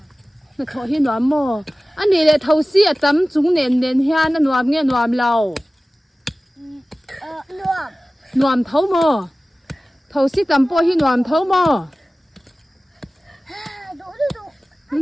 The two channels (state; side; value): normal; both; correlation 0.97